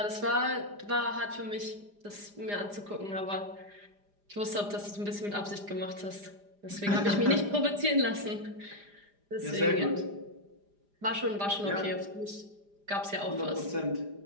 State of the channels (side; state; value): left; late; 4.9 ms